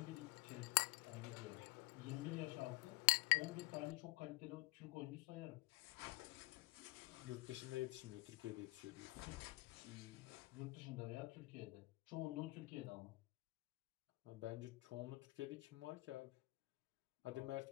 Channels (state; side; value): quieter; right; 23.1 dB